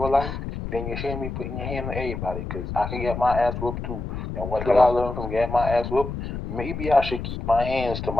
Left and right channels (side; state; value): left; noise; rumble, 6 dB below the sound